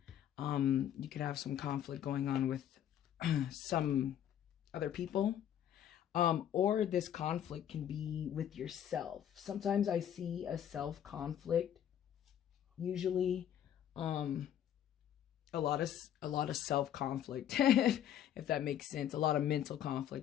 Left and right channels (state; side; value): quieter; right; 10.3 dB